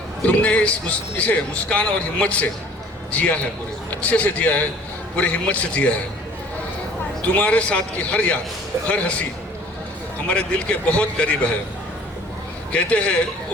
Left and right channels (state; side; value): normal; both; correlation 0.51